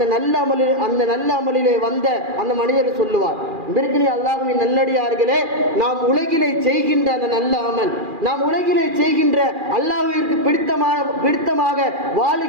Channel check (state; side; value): late; left; 2.4 ms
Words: நல்ல அமலிலே வந்த அந்த மனிதர் சொல்லுவார். பிறகு அல்லாஹ்வின் நல்லடியார்களே, நாம் உலகிலே செய்கின்ற அந்த நல்ல அமல், நாம் உலகிலே செய்கின்ற அல்லாஹ்விற்கு பிடித்தமாக